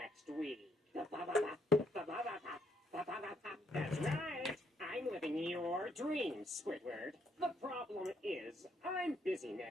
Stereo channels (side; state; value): both; normal; correlation 0.72